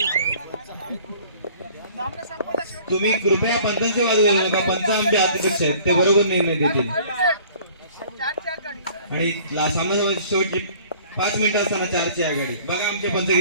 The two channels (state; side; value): inverted; both; correlation -0.51